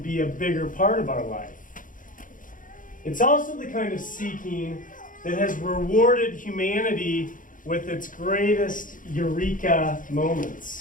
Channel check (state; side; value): late; right; 0.39 ms